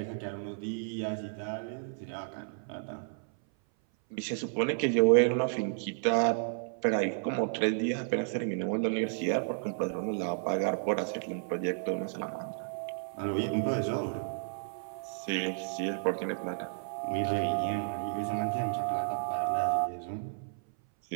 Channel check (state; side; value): silent; left; 56 dB below the other